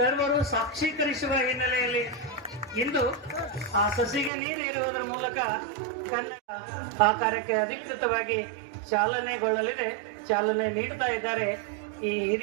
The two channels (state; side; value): drops out; left; at 4.3 s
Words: ಸಾಕ್ಷೀಕರಿಸುವ ಹಿನ್ನೆಲೆಯಲ್ಲಿ ಇಂದು ಆ ಸಸಿಗೆ ನೀರೇರುವುದರ ಮೂಲಕ ಕನ್ನಡ ಆ ಕಾರ್ಯಕ್ಕೆ ಅಧಿಕೃತವಾಗಿ ಚಾಲನೆಗೊಳ್ಳಲಿದೆ. ಚಾಲನೆ ನೀಡ್ತಾ ಇದ್ದಾರೆ ಈ